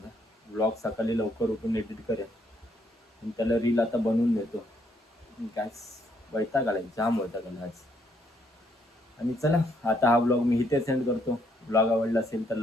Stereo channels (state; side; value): normal; both; correlation 0.71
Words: व्लॉग सकाळी लवकर उठून एडिट करेन आणि त्याला रील आता बनवून देतो. काय वैताग आला, जाम वैताग आला आज. आणि चला आता हा ब्लॉग मी इथे सेंड करतो. ब्लॉग आवडला असेल तर